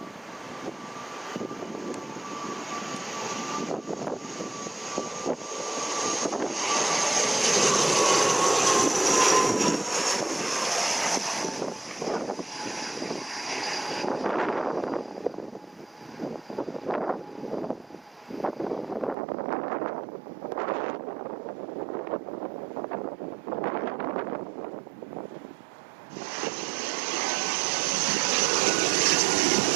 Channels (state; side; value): drops out; left; at 19.2 s